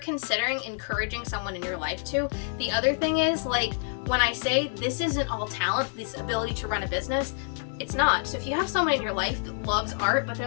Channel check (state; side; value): silent; right; 60 dB below the other